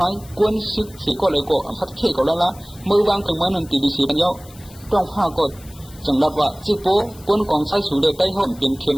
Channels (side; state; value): left; noise; hiss, 22 dB below the sound